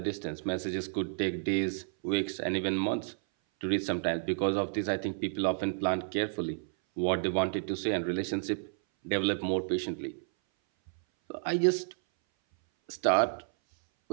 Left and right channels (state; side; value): silent; left; 57 dB below the other